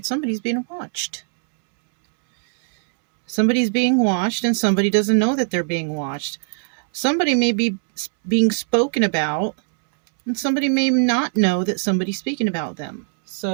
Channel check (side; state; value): left; silent; digital silence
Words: Somebody's being watched. Somebody's being watched, and somebody doesn't know that they're being watched. Somebody may be being spoken about, and somebody may not know that somebody's speaking about them.